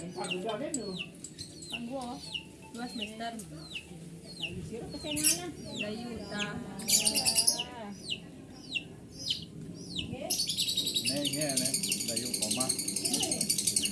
paguda kan lu. Panggo. 2 semester. Siro kesenganan. Dayuta. Nghe này, dayu koma.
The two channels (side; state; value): both; identical; correlation 1.00